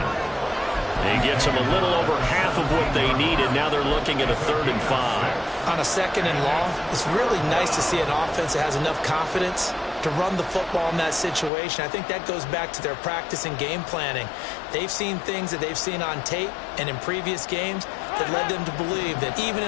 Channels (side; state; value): right; drops out; at 11.5 s